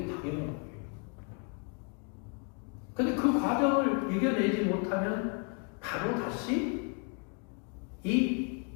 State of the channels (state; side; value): quieter; right; 38.0 dB